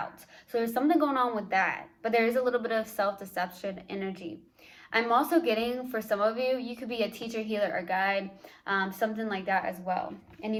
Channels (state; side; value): identical; both; correlation 1.00